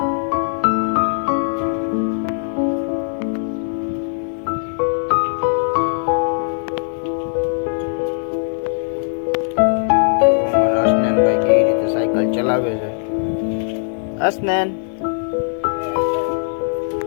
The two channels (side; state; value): right; silent; digital silence